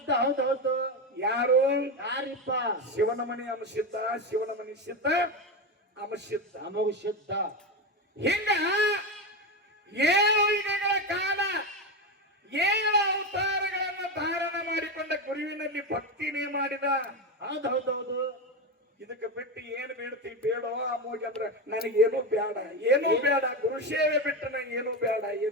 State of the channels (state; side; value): normal; both; correlation 0.15